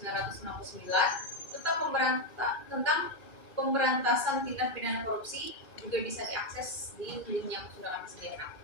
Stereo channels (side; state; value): right; late; 2.3 ms